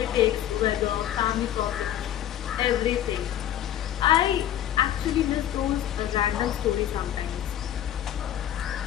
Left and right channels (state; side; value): quieter; right; 11.4 dB